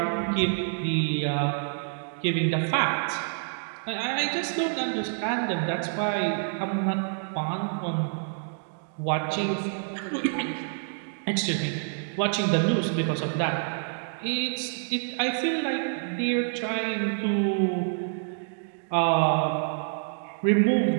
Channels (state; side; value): silent; left; digital silence